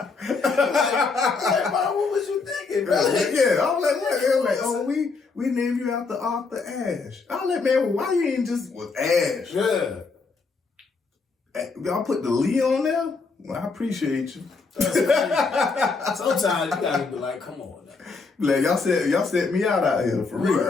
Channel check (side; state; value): right; quieter; 4.4 dB